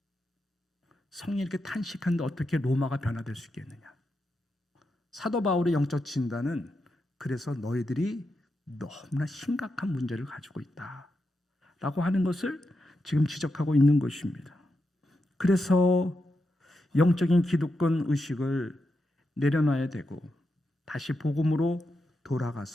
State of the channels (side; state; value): both; normal; correlation 0.86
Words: 성령이 이렇게 탄식하는데 어떻게 로마가 변화될 수 있겠느냐. 사도 바울의 영적 진단은 그래서 너희들이 너무나 심각한 문제를 가지고 있다라고 하는 것을 지금 지적하고 있는 것입니다. 그래서 영적인 기득권 의식을 내려놔야 되고 다시 복음으로